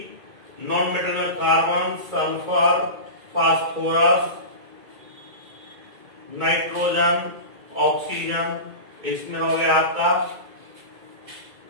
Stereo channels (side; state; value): left; late; 2.1 ms